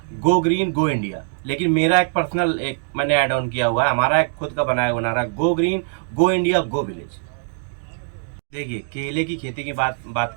गो ग्रीन गो इंडिया, लेकिन मेरा एक पर्सनल एक मैंने ऐड ऑन किया हुआ है, हमारा एक खुद का बनाया हुआ नारा go green go India go village. देखिए केले की खेती की बात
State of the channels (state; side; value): silent; left; digital silence